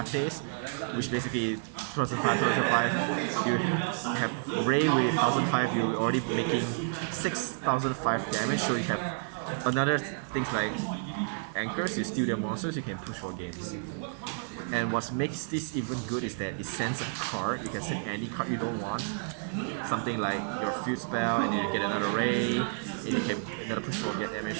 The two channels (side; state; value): left; silent; 58 dB below the other